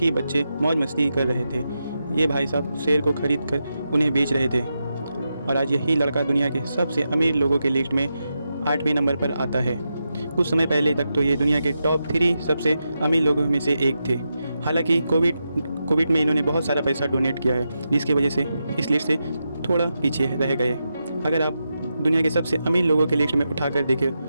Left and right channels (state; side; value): inverted; both; correlation -0.87